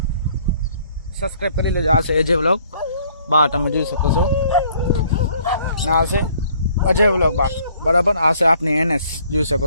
સબસ્ક્રાઇબ કરી લેજો આ છે અજય વ્લોગ બા તમે જોઈ શકો છો ના છે અજય વ્લોગ બા બરાબર આ છે આપની એનએસ જોઈ શકો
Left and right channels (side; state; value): both; inverted; correlation -0.60